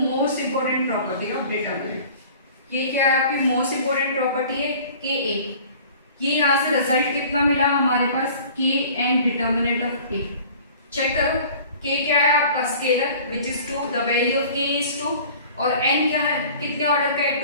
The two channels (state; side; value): inverted; both; correlation -0.46